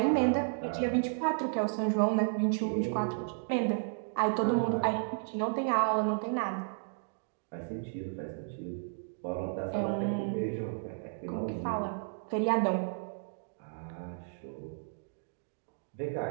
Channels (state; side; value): silent; left; digital silence